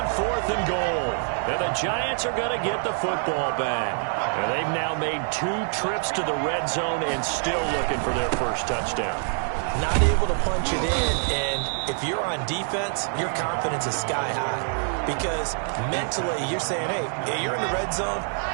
4th and goal. And the Giants are going to get the football back. And they've now made 2 trips to the red zone and still looking for their first touchdown. Not able to punch it in, and if you're on defense, your confidence is sky high. Because mentally, you're saying, hey, you're in the red zone.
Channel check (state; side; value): silent; left; 56 dB below the other